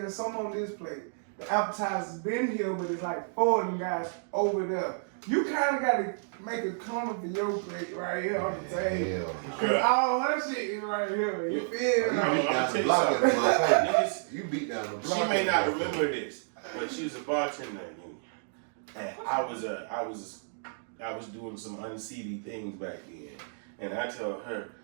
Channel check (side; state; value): left; silent; digital silence